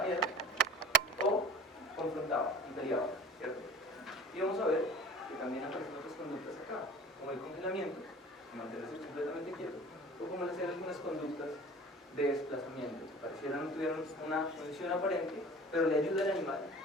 miedo, o confrontaba y peleaba, ¿cierto? Y vamos a ver que también aparecen otras conductas acá, como el congelamiento, mantenerse completamente quieto, o como hacer algunas conductas de desplazamiento, que pareciera no tuvieran una función aparente, pero le ayuda al animal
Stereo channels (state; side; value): normal; both; correlation 0.41